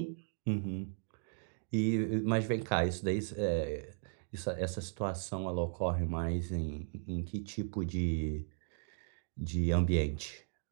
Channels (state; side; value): silent; left; digital silence